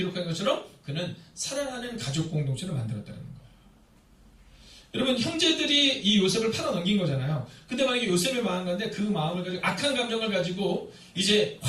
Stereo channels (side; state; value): both; identical; correlation 1.00